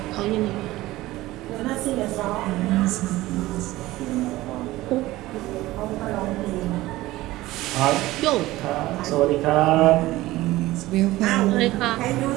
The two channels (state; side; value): quieter; left; 17.5 dB